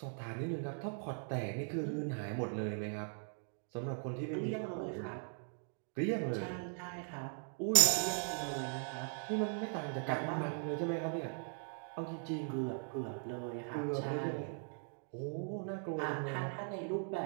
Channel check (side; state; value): left; silent; 51 dB below the other